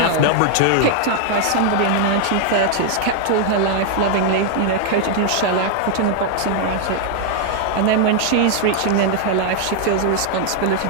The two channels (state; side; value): different; both; correlation 0.00